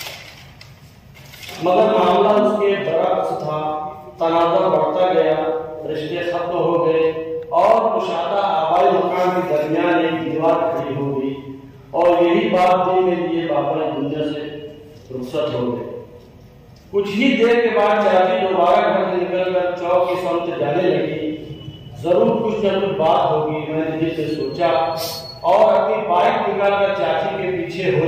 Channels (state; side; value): identical; both; correlation 1.00